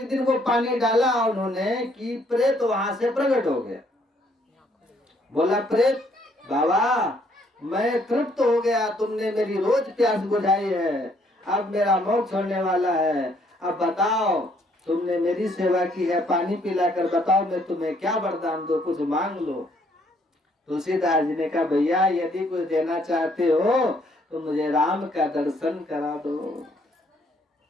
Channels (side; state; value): both; normal; correlation 0.67